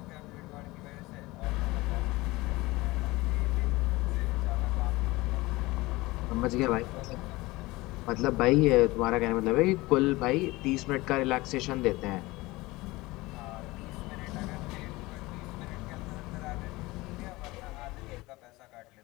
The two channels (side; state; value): right; quieter; 21.0 dB